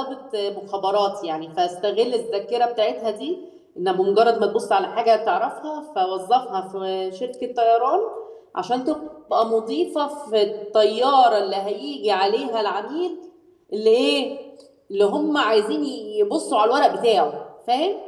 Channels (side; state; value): both; identical; correlation 1.00